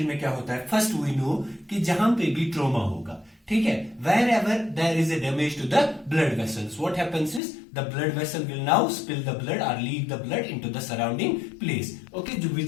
में क्या होता है, first we know कि जहां पे भी trauma होगा, ठीक है, wherever there is a damage to the blood vessels, what happens is the blood vessel will now spill the blood और leak the blood into the surrounding place. Okay,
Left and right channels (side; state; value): right; drops out; at 7.4 s